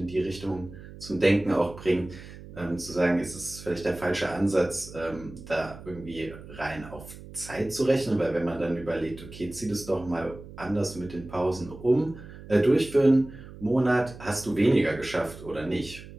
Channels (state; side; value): noise; right; hum, 16 dB below the sound